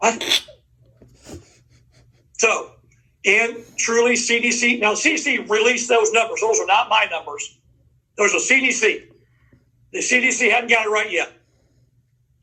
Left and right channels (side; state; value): both; identical; correlation 1.00